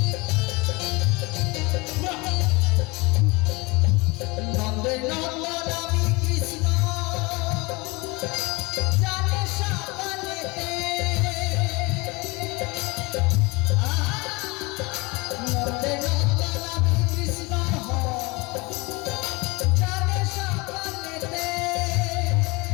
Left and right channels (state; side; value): quieter; right; 25.8 dB